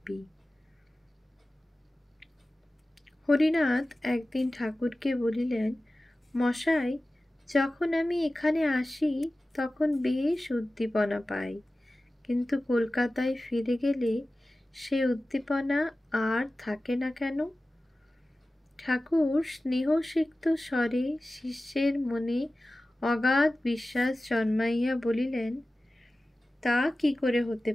হরিনাথ একদিন ঠাকুরকে বলিলেন, মশাই, যখন আমি এখানে আসি তখন বেশ উদ্দীপনা পাই, কিন্তু কলকাতায় ফিরে গেলে সে উদ্দীপনা আর থাকে না কেন? ঠাকুর স্নেহসিক্ত স্বরে শিষ্যের মনে অগাধ বিশ্বাস জন্মাইয়া বলিলেন, তা কি করে হতে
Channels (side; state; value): both; normal; correlation 0.96